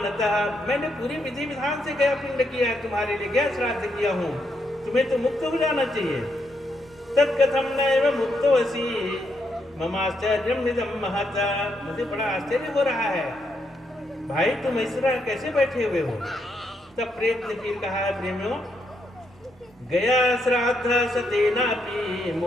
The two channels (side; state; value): both; normal; correlation 0.78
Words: मैंने पूरी विधि विधान से गया पिंड किया है तुम्हारे लिए, गया श्राद्ध किया हूँ, तुम्हें तो मुक्त हो जाना चाहिए। तत्कथम नैव मुक्तो असि ममाश्चर्यम निदम महता, मुझे बड़ा आश्चर्य हो रहा है भाई, तुम इस तरह कैसे बैठे हुए हो। तब प्रेत ने फिर कहा है प्रेमियों, गया श्राद्ध सतेनापि